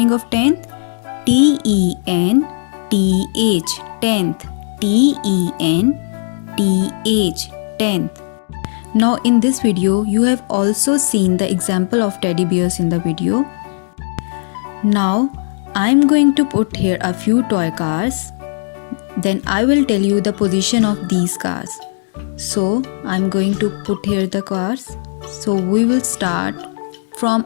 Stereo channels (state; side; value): silent; right; digital silence